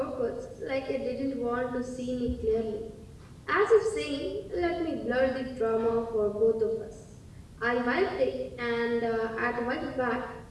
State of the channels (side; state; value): both; identical; correlation 1.00